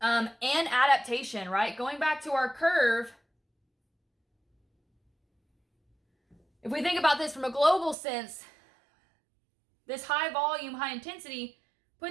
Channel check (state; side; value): drops out; left; at 8.0 s